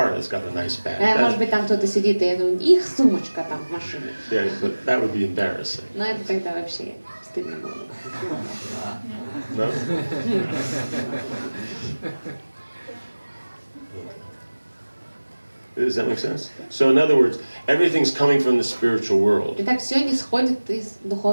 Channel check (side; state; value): both; inverted; correlation -1.00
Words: that's got a nice bag. Может быть, там кто-то сидит, и их сумочка там в машине. Yeah, but that would be embarrassing. Но это тогда вообще стыдно было. No? Does that make sense? So in other words, everything's coming from the spiritual world. Итак, все исходит из